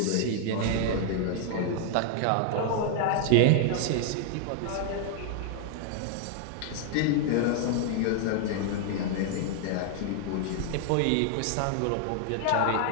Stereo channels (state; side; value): different; both; correlation 0.00